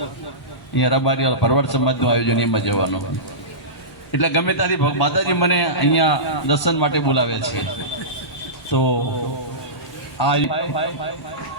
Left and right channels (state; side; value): normal; both; correlation -0.19